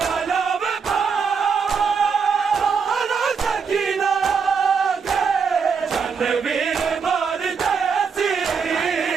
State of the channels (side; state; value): left; quieter; 5.9 dB